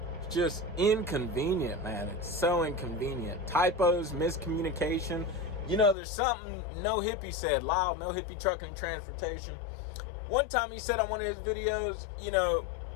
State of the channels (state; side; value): drops out; right; at 6.0 s